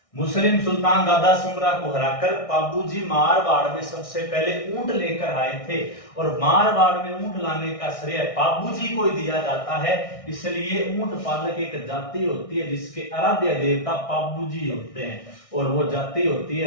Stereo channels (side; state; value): right; late; 1.6 ms